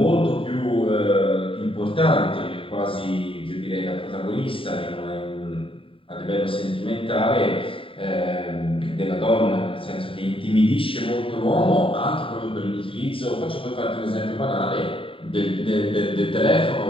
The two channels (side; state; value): right; late; 0.26 ms